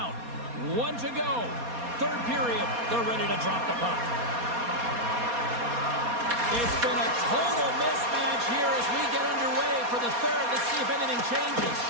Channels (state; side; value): late; left; 4.2 ms